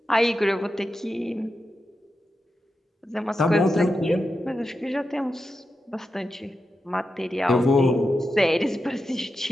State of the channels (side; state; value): both; normal; correlation 0.89